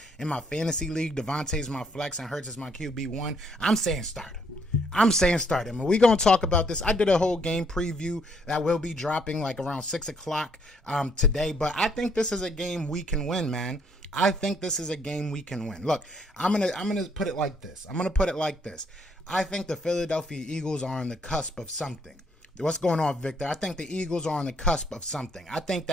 in my fantasy league? Devontae's my flex and Hurts is my QB1. I'm saying start him. And we're going to talk about this. I did a whole game preview that will be dropping like around 6 o'clock today, but I think this is a game we can win, man. I think this is a game we can win. Look, I'm gonna put it like this. I think the Philadelphia Eagles are on the cusp of something. What's going on, Victor? I think the Eagles are on the cusp of something. I think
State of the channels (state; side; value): normal; both; correlation 0.69